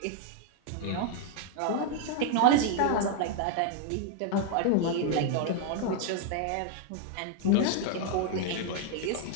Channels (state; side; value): different; both; correlation 0.00